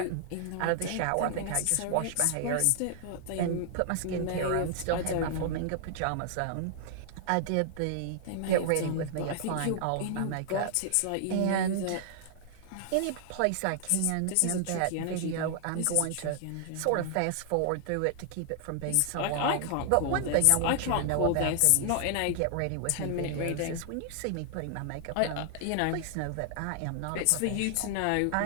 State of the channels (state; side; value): different; both; correlation -0.01